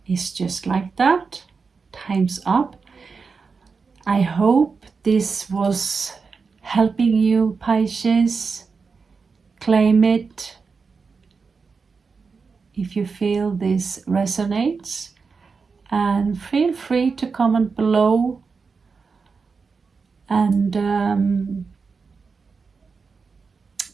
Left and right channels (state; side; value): quieter; left; 4.9 dB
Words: just like that. Time's up. I hope this was helping you, Pisces. Claim it if you feel this resonates, and feel free to comment below. And